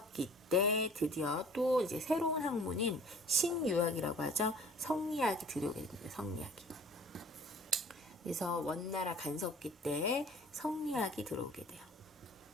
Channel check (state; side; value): normal; both; correlation 0.48